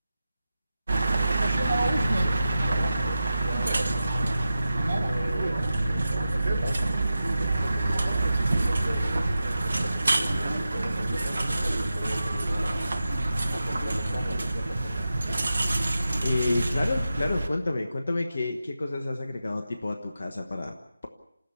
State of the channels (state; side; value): inverted; both; correlation -0.92